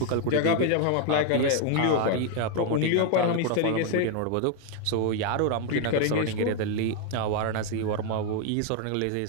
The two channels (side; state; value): both; different; correlation 0.01